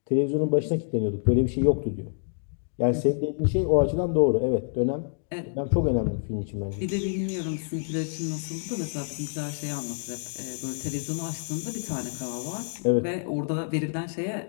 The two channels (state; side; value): silent; right; digital silence